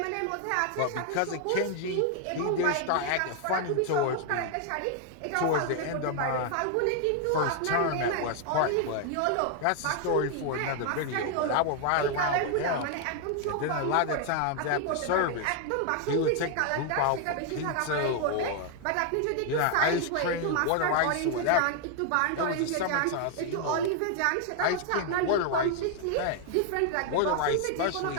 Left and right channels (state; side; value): different; both; correlation 0.00